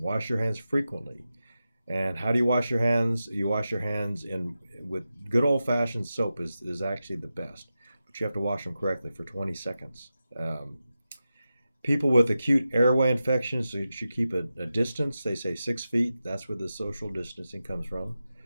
your hands frequently. And how do you wash your hands? You wash your hands with good old-fashioned soap is actually the best, but you have to wash them correctly for 20 seconds. People with acute airway infections, so you should keep a distance. They say 6 feet. That's where the social distancing comes from.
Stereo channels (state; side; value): inverted; both; correlation -0.91